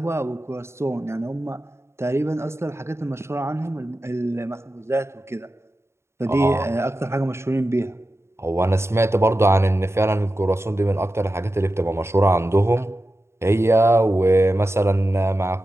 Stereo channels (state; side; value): late; left; 0.13 ms